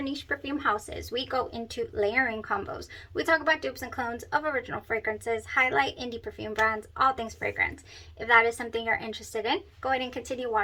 niche perfume houses. We go into layering combos. We talk about dupes and clones of original fragrances, highlight indie perfume brands, all things fragrance. If that is something you're interested in, go ahead and continue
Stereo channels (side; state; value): both; identical; correlation 1.00